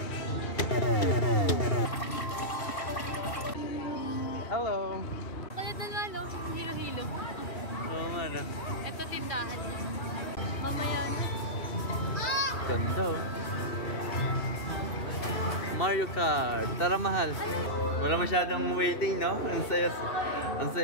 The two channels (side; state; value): right; late; 2.7 ms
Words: Hello. Kaya na nga, no? Hilo-hilo. Oo nga na. Ito tindahan. Mamaya na. Ganda oh. Mario Kart. Tara mahal. Wala masyadong waiting, no? Ang